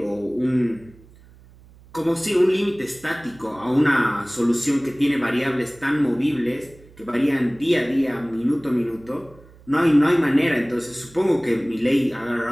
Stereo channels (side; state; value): right; noise; hum, 25 dB below the sound